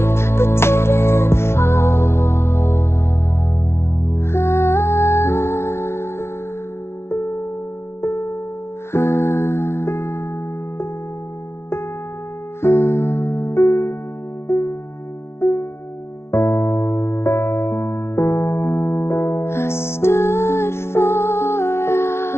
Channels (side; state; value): right; late; 0.12 ms